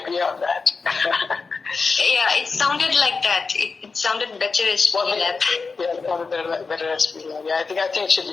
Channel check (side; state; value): right; quieter; 4.5 dB